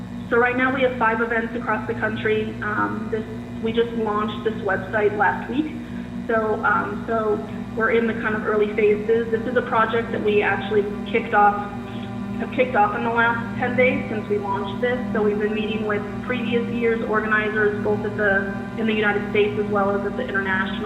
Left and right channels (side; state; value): both; identical; correlation 1.00